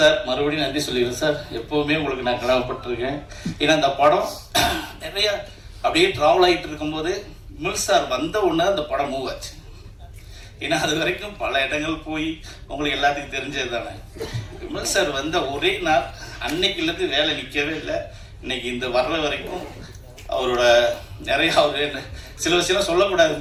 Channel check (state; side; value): identical; both; correlation 1.00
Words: மறுபடியும் நன்றி சொல்லிடுறேன் சார். எப்போவுமே உங்களுக்கு நான் கடமைப்பட்டிருக்கேன். ஏன்னா இந்த படம் நிறைய அப்படியே ட்ராவல் ஆகிட்டு இருக்கும்போது விமல் சார் வந்த உடனே அந்த படம் மூவ் ஆச்சு. ஏன்னா அது வரைக்கும் பல இடங்கள் போய் உங்களுக்கு எல்லாத்துக்கும் தெரிஞ்சது தானே. விமல் சார் வந்த ஒரே நாள் அன்னைக்குலேருந்து வேலை நிற்கவே இல்லை. இன்னைக்கு இந்த வர்ற வரைக்கும் அவரோட நிறைய அவர் சில விஷயம்